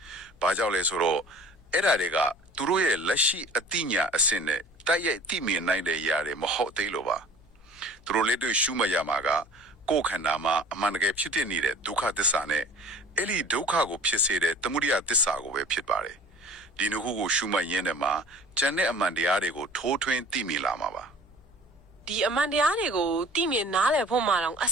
။ဘာကြောင့်လဲဆိုတော့အဲ့ဒါတွေကသူတို့ရဲ့လက်ရှိအသိဉာဏ်အဆင့်နဲ့တိုက်ရိုက်သိမြင်နိုင်တဲ့ຢာတွေမဟုတ်သေးလို့ပါ။သူတို့လက်တွေ့ရှုမှတ်ရမှာကကိုယ်ခန္ဓာမှာအမှန်တကယ်ဖြစ်နေတဲ့ဒုက္ခသစ္စာနဲ့အဲ့ဒီဒုက္ခကိုဖြစ်စေတဲ့သမုဒိယသစ္စာကိုပဲဖြစ်ပါတယ်။ဒီနှစ်ခုကိုရှုမှတ်ရင်းနဲ့မှာကျန်တဲ့အမှန်တရားတွေကိုထိုးထွင်းသိမြင်လာမှာပါဒီအမှန်တရားတွေကိုသိမြင်နားလည်ဖို့မှတော့အ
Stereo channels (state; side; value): noise; left; hum, 28 dB below the sound